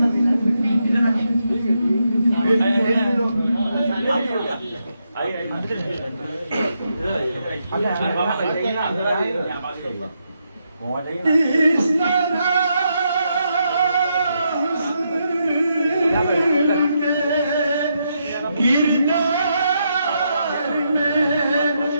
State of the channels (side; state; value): both; inverted; correlation -0.81